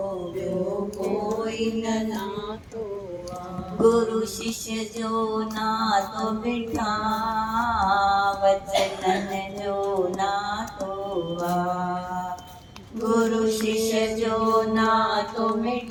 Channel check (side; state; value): both; identical; correlation 1.00